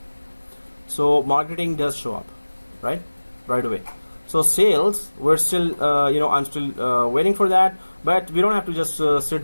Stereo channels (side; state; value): both; inverted; correlation -1.00